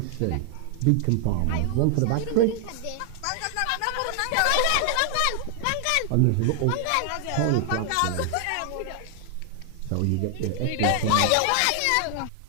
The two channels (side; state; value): both; different; correlation 0.00